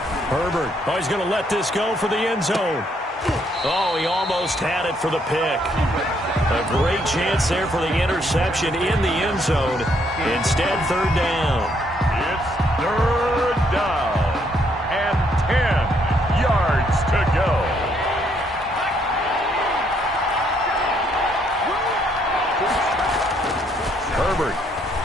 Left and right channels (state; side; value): normal; both; correlation 0.71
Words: Herbert. Oh, he's going to let this go for the end zone. Oh, he almost had it for the pick. A great chance there for the interception in the end zone. Instead, third down. It's third down and 10 yards to go. Herbert.